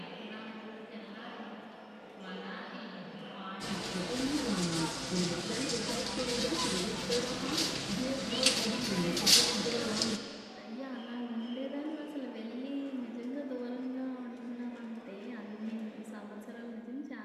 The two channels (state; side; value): identical; both; correlation 1.00